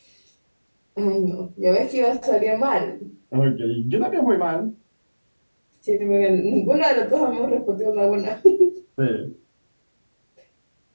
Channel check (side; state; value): both; inverted; correlation -1.00